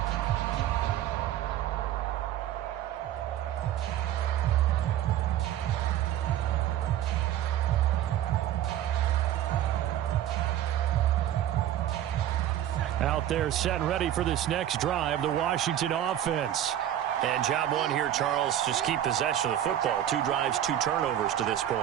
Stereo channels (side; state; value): left; quieter; 11.6 dB